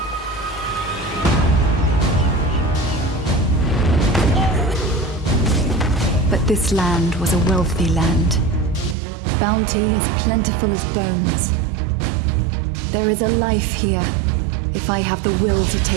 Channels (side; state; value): left; drops out; at 9.0 s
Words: But this land was a wealthy land. Bounty as plentiful as bones. There is a life here, if I have the will to